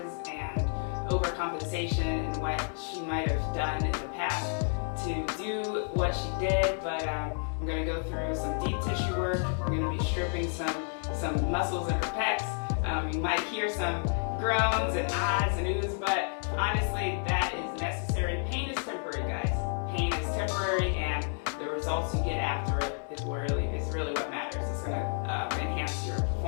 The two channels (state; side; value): silent; right; 57 dB below the other